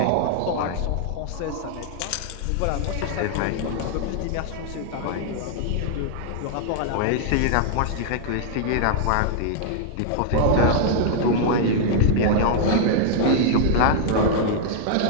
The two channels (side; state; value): both; different; correlation -0.01